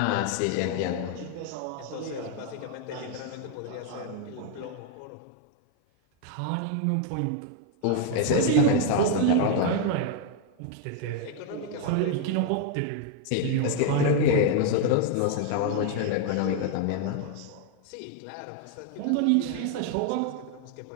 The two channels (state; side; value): different; both; correlation 0.00